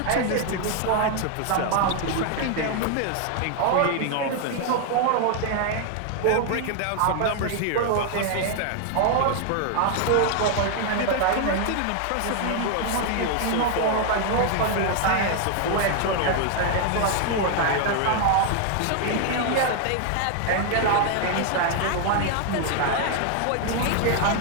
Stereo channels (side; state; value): both; different; correlation 0.00